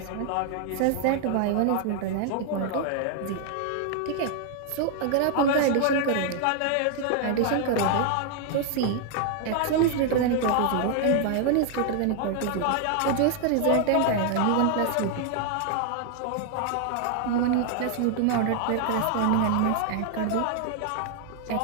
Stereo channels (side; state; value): both; different; correlation 0.00